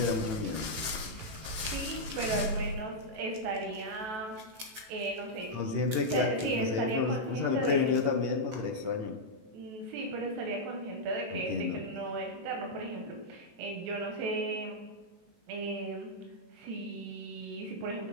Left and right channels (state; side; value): late; left; 18 ms